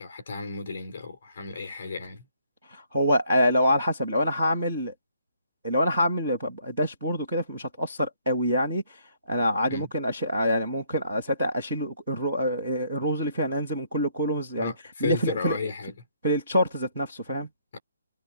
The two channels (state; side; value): inverted; both; correlation -0.68